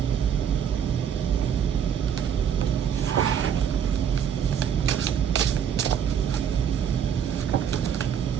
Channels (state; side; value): quieter; left; 8.3 dB